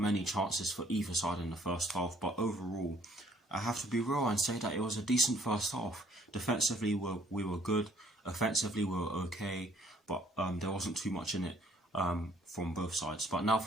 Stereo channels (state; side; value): normal; both; correlation 0.61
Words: many chances for either side in the first half, but overall, I have to be real and say that it was a decent first half. Defensively, we were good. Offensively, we were okay, but there wasn't too much in it from both sides. But now